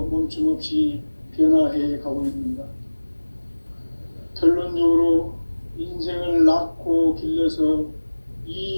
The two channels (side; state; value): both; inverted; correlation -1.00